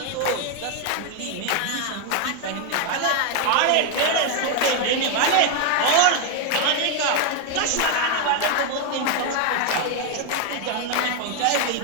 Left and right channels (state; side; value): different; both; correlation 0.01